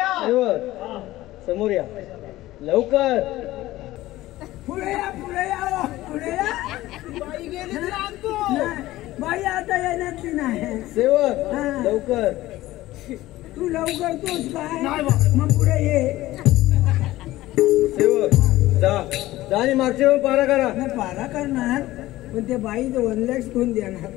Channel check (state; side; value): quieter; right; 16.6 dB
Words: समोर या लवकर. पुढे या पुढे या पुढे या. बाई गेली तर आणतो. नाही, बाई आता येण्यातली नाही. सेवक हा. लवकर. तू लवकर तोच काय नाही बा. मग पुढे ये. सेवक जा जा आणि मागच्या वेळी पारा करा. नाही पारा करणार पण ते बाई 1 लाख कोण देणार?